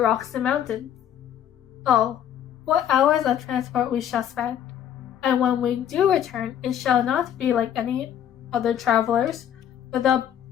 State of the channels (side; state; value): right; quieter; 9.9 dB